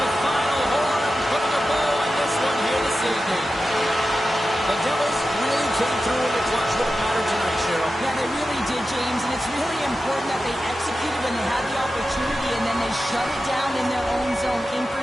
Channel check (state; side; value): normal; both; correlation 0.92